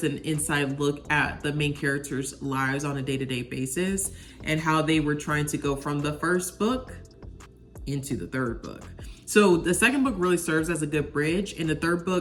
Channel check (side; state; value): both; identical; correlation 1.00